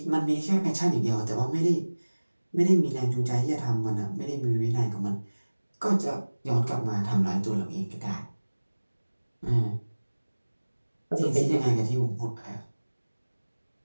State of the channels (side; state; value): both; inverted; correlation -1.00